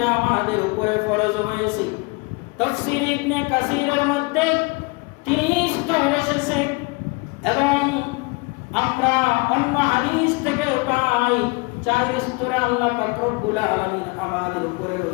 আমাদের উপরে ফরজ হয়েছে। তাফসীর ইবনে কাসিরের মধ্যে ৩ স্তর এসেছে এবং আমরা অন্য হাদিস থেকে পাই ৪ স্তরে আল্লাহ পাক রব্বুল আলামিন আমাদের উপরে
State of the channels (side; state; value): right; quieter; 28.2 dB